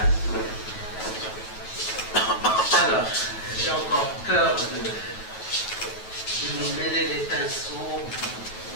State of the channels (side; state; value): right; late; 9.2 ms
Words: Alors, j'ai encore peur de nous mêler les pinceaux